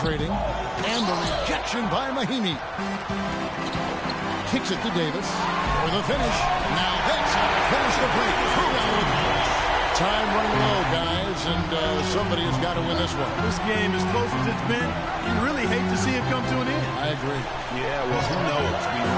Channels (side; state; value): both; identical; correlation 1.00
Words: And the rejection by Mahimi. Kicks it to Davis for the finish. Now that's how to finish the break. Time running low, guys, and somebody has got to win this one. This game, as close as it's been, you really hate to see it come to an end. I agree. Yeah, well, who knows? We